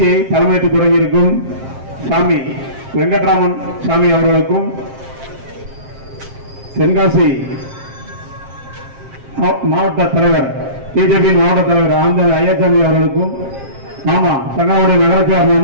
தலைமையேற்று தொடங்கியிருக்கும் சாமி வெங்கட்ராமன் சாமி அவர்களுக்கும், தென்காசி மாவட்ட தலைவர் பிஜேபி மாவட்ட தலைவர் ஆனந்தன் ஐயாச்சாமி அவர்களுக்கும், மாமா சங்கரவாடி நகராட்சியார்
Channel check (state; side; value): late; left; 7.5 ms